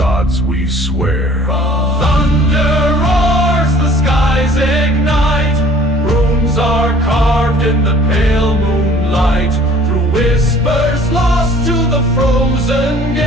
we swear. Thunder roars, the skies ignite. Runes are carved in the pale moonlight. Through whispers lost to the frozen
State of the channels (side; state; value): both; normal; correlation 0.53